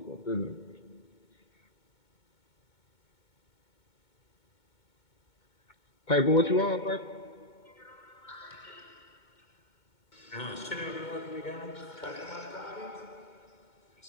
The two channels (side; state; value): right; late; 2.2 ms